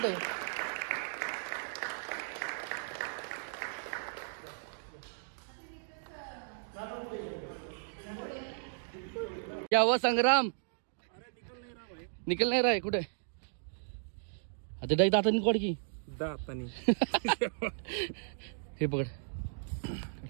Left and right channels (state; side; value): silent; left; digital silence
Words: क्या हुआ संग्राम? निकल नहीं रहा है कुठे? आता डाई दातानी कोड की दातानी हे पकड,